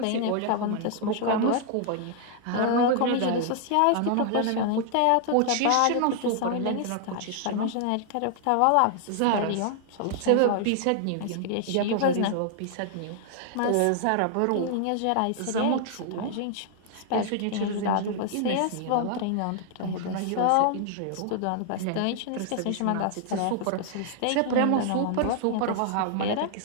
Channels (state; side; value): different; both; correlation 0.00